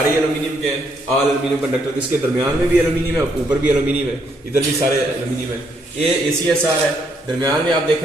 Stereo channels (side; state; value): both; normal; correlation 0.73